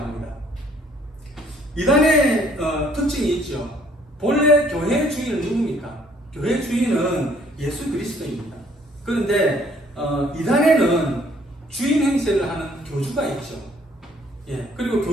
이단의 특징이 있죠. 본래 교회 주인은 누굽니까? 교회 주인은 예수 그리스도입니다. 그런데 이단에는 주인 행세를 하는 교주가 있죠. 그리고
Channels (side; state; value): both; normal; correlation 0.62